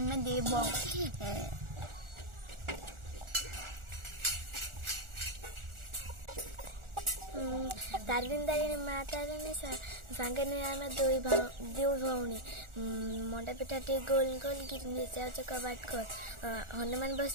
देव तारिणी तारिणी माँ तारिणी सांगे आम दो भौणी मंडा पिठा टे गोल गोल गिटनी जाऊे कबाट खोल हनुमान बस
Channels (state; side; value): late; left; 1.4 ms